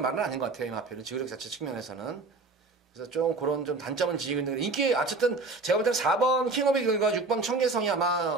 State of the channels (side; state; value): left; quieter; 3.6 dB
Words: 아닌 것 같아요. 이 마필은 지구력 자체 측면에서는. 그래서 좀 그런 좀 단점은 지니고 있는 인기 어쨌든 제가 볼 때는 4번 킹오브 이글과 6번 천계성이